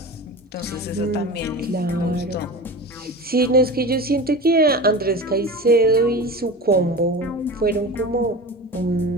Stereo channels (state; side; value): normal; both; correlation 0.31